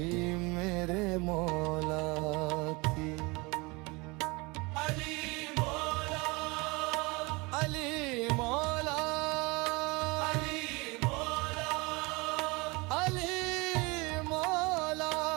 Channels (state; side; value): quieter; left; 26.1 dB